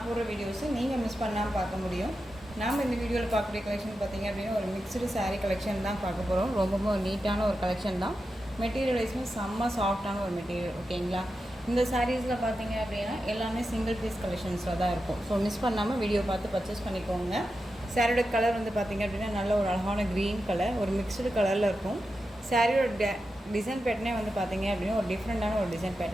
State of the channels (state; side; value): normal; both; correlation 0.90